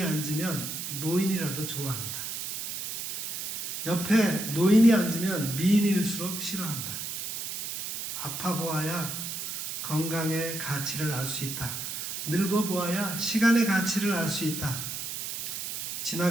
앉으면 노인이라도 좋아한다. 옆에 노인이 앉으면 미인일수록 싫어한다. 아파 보아야 건강의 가치를 알 수 있다. 늙어 보아야 시간의 가치를 알 수 있다.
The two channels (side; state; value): right; noise; hiss, 5 dB below the sound